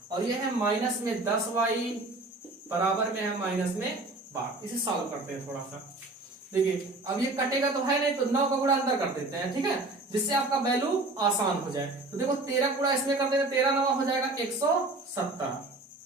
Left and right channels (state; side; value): quieter; left; 3.0 dB